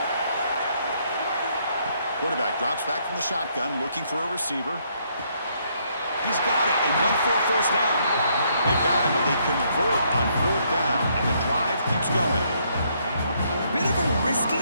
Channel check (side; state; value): both; inverted; correlation -0.71